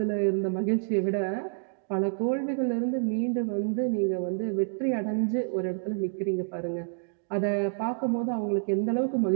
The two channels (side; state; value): left; silent; digital silence